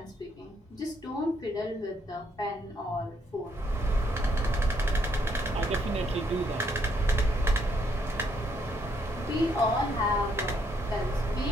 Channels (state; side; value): normal; both; correlation 0.72